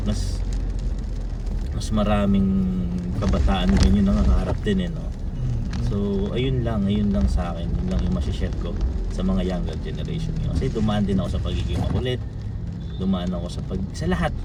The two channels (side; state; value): both; identical; correlation 1.00